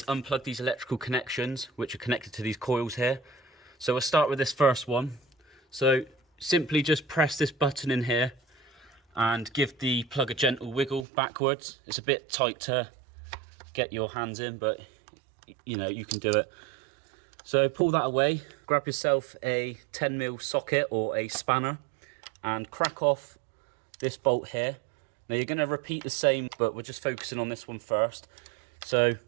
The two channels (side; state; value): left; drops out; at 11.1 s